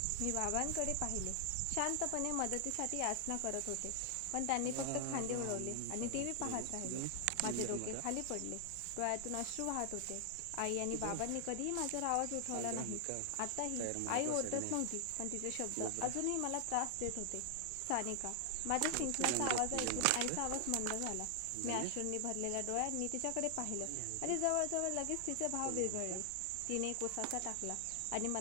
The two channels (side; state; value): both; different; correlation 0.00